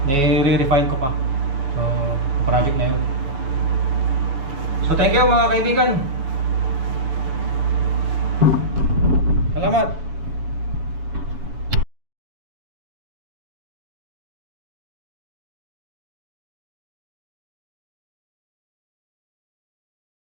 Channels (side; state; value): left; late; 7.1 ms